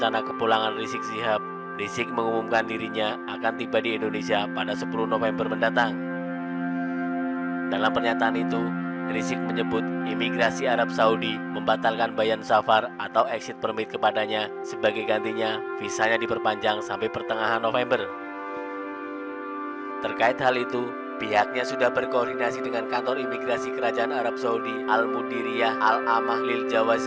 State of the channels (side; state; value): both; identical; correlation 1.00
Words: kepulangan Rizik Syihab. Rizik mengumumkan dirinya akan tiba di Indonesia pada 10 November mendatang. Dalam pernyataan itu, Rizik menyebut imigrasi Arab Saudi membatalkan bayan safar atau exit permit kepadanya, sebagai gantinya visanya diperpanjang sampai pertengahan November. Terkait hal itu, pihaknya sudah berkoordinasi dengan kantor imigrasi Kerajaan Arab Saudi Al-Mudiriyah Al-Amah Lil